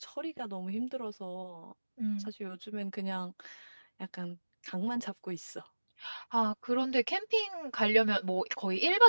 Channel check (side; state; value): both; inverted; correlation -1.00